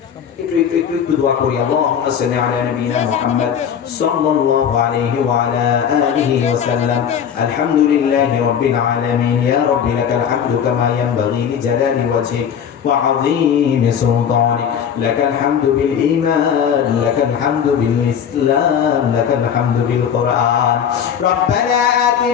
একটু দোয়া করি। আল্লাহুম্মা সাল্লি আলা নাবিয়িনা মুহাম্মদ সাল্লাল্লাহু আলাইহি ওয়া আলা আলিহি ওয়া সাল্লাম। আলহামদুলিল্লাহি রাব্বিল আলামিন। ইয়া রাব্বি লাকাল হামদু কামা ইয়ানবাগি লিজালালি ওয়াজহিক ওয়া আযীমি সুলতানিক। লাকাল হামদু বিল ঈমান, লাকাল হামদু বিল ইসলাম, লাকাল হামদু বিল কুরআন। রব্বানা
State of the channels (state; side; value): quieter; right; 8.2 dB